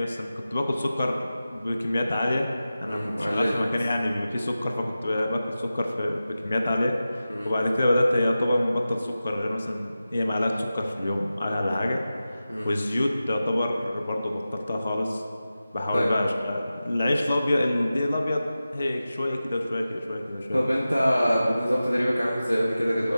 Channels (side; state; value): both; inverted; correlation -0.94